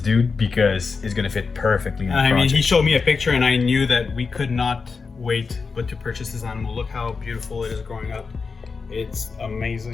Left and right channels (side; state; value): right; quieter; 4.8 dB